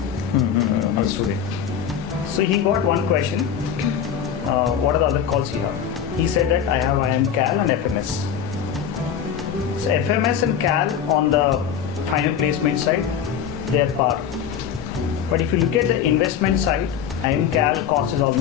a student. So he got one question. what are the other calls you have? He said that I have IM Cal and FMS. So FMS and Cal on the final placement side, they are par. But if you look at the investment side, IM Cal cost is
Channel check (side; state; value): right; quieter; 8.3 dB